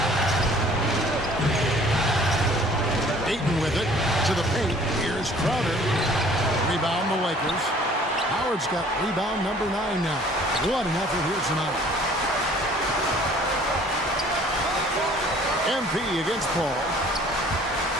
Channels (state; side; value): normal; both; correlation 0.54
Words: Ayton with it to the paint. Here's Crowder. Rebound the Lakers. Howard's got rebound number 9 now. What an effort here tonight. MP against Paul.